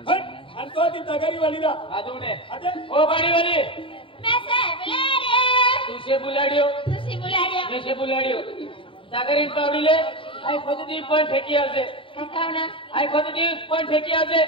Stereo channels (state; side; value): late; right; 0.25 ms